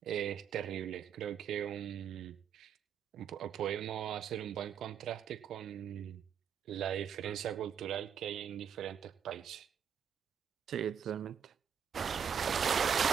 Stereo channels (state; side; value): quieter; left; 7.9 dB